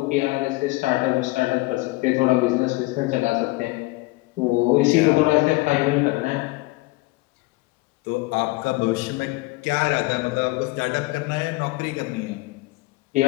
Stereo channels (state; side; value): quieter; right; 21.7 dB